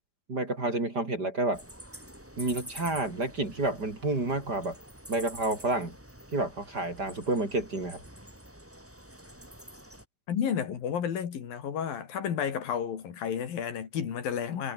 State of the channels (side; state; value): both; normal; correlation 0.00